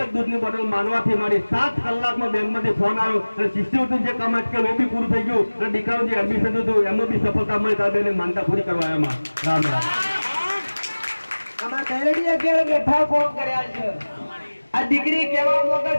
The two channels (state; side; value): inverted; both; correlation -1.00